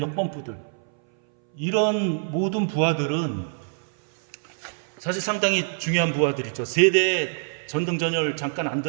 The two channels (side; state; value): left; silent; 60 dB below the other